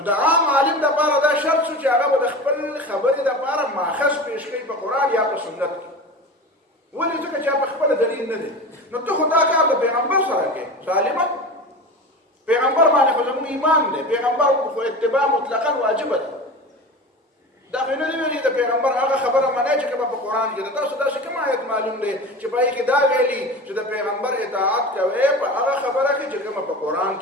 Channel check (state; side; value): normal; both; correlation 0.31